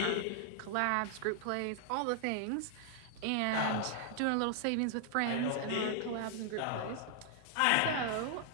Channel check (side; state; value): both; different; correlation 0.00